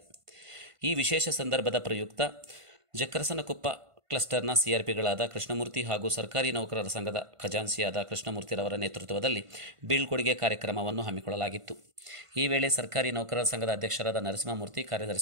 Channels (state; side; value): late; left; 1.5 ms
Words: ಈ ವಿಶೇಷ ಸಂದರ್ಭದ ಪ್ರಯುಕ್ತ ಜಕ್ಕರಸನಕೊಪ್ಪ ಕ್ಲಸ್ಟರ್ನ ಸಿಆರ್ಪಿಗಳಾದ ಕೃಷ್ಣಮೂರ್ತಿ ಹಾಗೂ ಸರ್ಕಾರಿ ನೌಕರರ ಸಂಘದ ಖಜಾನ್ಸಿಯಾದ ಕೃಷ್ಣಮೂರ್ತಿರವರ ನೇತೃತ್ವದಲ್ಲಿ ಬೀಳ್ಕೊಡುಗೆ ಕಾರ್ಯಕ್ರಮವನ್ನು ಹಮ್ಮಿಕೊಳ್ಳಲಾಗಿತ್ತು. ಈ ವೇಳೆ ಸರ್ಕಾರಿ ನೌಕರರ ಸಂಘದ ಅಧ್ಯಕ್ಷರಾದ ನರಸಿಂಹಮೂರ್ತಿ,